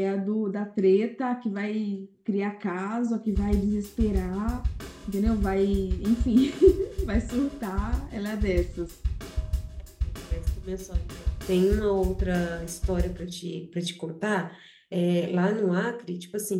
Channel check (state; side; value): identical; both; correlation 1.00